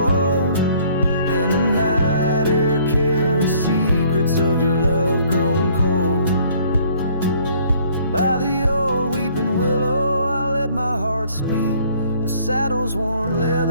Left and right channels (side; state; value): both; inverted; correlation -0.59